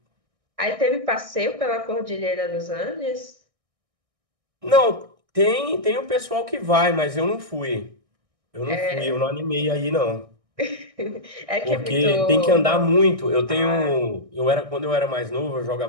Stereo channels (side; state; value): left; late; 1.6 ms